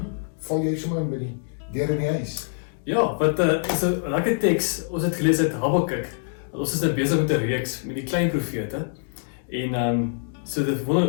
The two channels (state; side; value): silent; right; digital silence